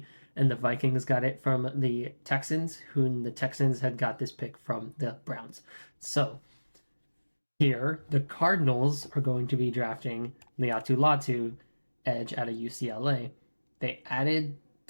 and the Vikings got it from the Texans, who the Texans had got this pick from the Browns. So here, the Cardinals are going to be drafting Liatu Latu, edge out of UCLA. They added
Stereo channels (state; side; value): inverted; both; correlation -1.00